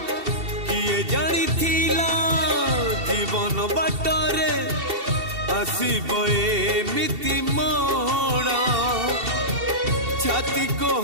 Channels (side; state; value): left; late; 2.7 ms